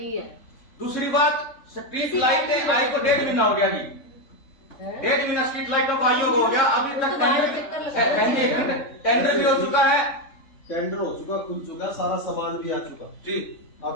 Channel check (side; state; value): right; late; 3.7 ms